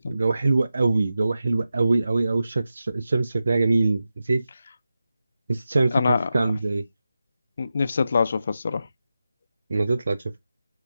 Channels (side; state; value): both; inverted; correlation -0.91